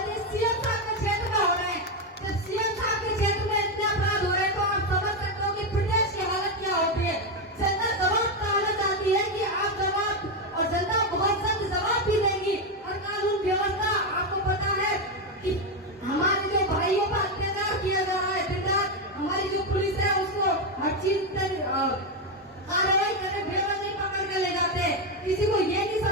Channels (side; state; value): both; normal; correlation 0.08